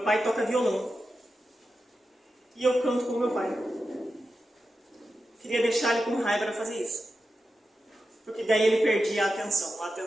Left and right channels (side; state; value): both; normal; correlation 0.90